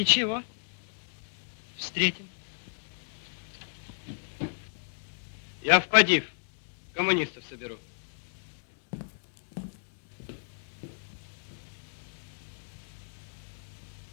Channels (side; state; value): right; silent; digital silence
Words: Встретим. Я в Падив. Коммунистов соберу.